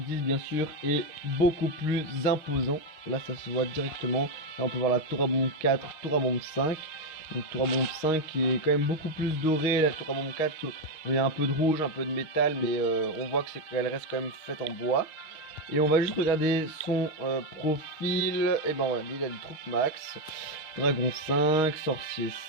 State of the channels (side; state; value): right; late; 6.5 ms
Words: 10, bien sûr, est beaucoup plus imposant. Là, ça se voit directement. Là, on peut voir la tour à bombe 4, tour à bombe 5. Donc tour à bombe 5 qui est quand même beaucoup plus dorée. La tour à bombe 4, il y a un peu de rouge, un peu de métal. Mais on voit qu'elle reste quand même faite en bois. Et on va juste regarder son profil. Et ben voilà, il a des troupes max. Dragon 5, sorcier